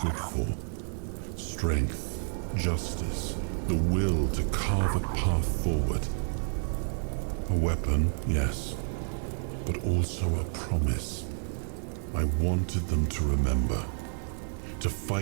for. Strength, justice, the will to carve a path forward. A weapon, yes, but also a promise. I wanted them to remember, to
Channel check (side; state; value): left; silent; 58 dB below the other